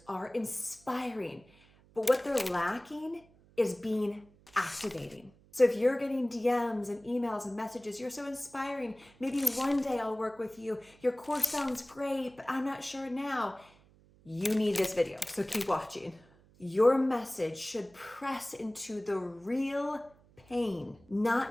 are inspiring, but what they're lacking is being activating. So if you're getting DMs and emails and messages, you're so inspiring, maybe one day I'll work with you, your course sounds great, but I'm not sure now. You need this video, so keep watching. Your message should press into the real pain,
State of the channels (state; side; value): noise; right; hum, 28 dB below the sound